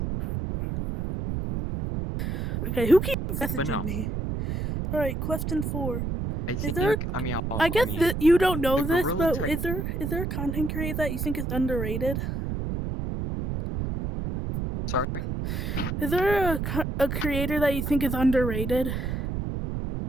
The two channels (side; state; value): right; noise; rumble, 2 dB below the sound